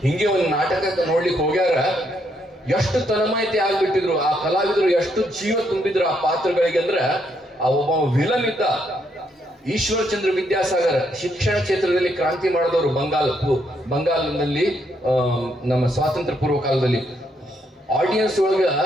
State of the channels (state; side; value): normal; both; correlation 0.75